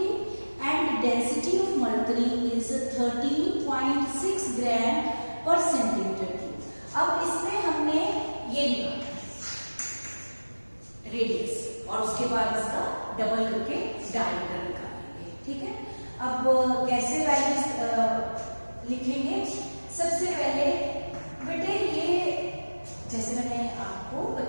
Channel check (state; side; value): inverted; both; correlation -1.00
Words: and density of mercury is 13.6 gram per centimeter cube. अब इसमें हमने ये लिखा radius, और उसके बाद इसका double करके डायमीटर निकालेंगे। ठीक है, अब कैसे वैल्यूज लिखेंगे? सबसे पहले बेटे ये जैसे मैंने आपको